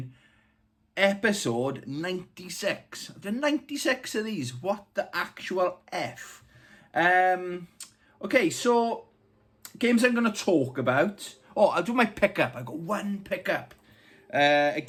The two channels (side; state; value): both; identical; correlation 1.00